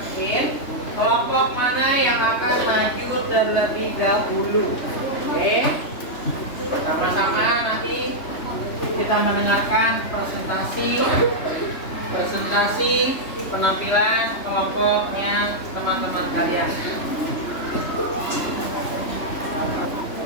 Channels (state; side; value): late; right; 3.3 ms